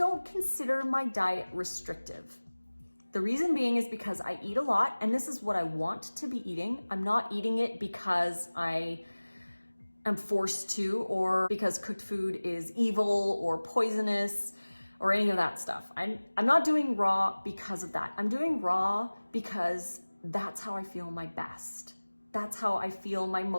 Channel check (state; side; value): inverted; both; correlation -1.00